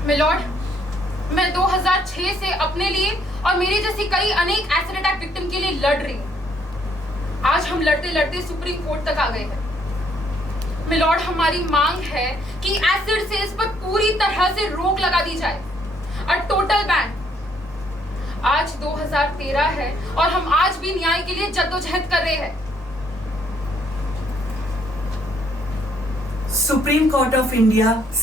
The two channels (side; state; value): both; normal; correlation 0.68